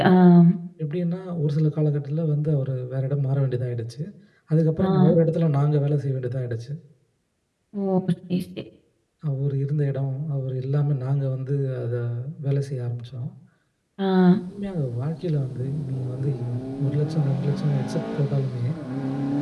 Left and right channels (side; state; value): both; identical; correlation 1.00